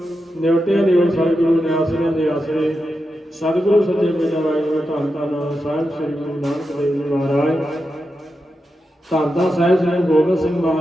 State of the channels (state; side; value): normal; both; correlation 0.89